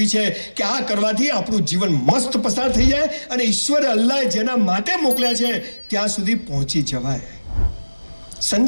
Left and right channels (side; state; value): both; inverted; correlation -1.00